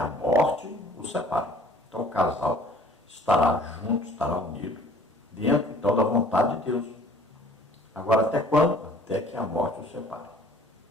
morte o separe. Então, o casal estará junto, estará unido, dentro, então, da vontade de Deus. Agora, até quando? Até que a morte o separe.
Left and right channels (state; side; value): normal; both; correlation 0.53